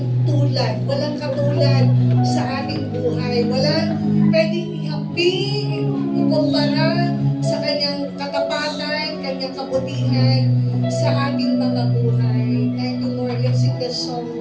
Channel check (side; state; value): both; identical; correlation 1.00